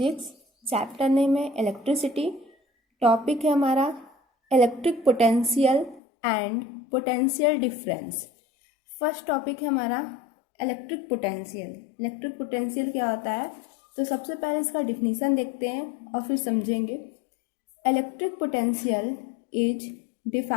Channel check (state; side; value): drops out; right; at 6.0 s